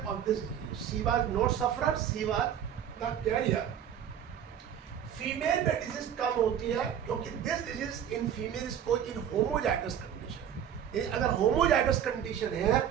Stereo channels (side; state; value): left; quieter; 9.3 dB